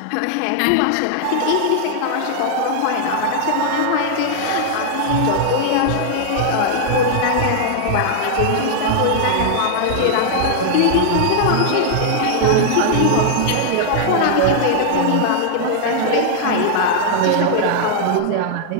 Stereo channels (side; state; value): both; different; correlation -0.01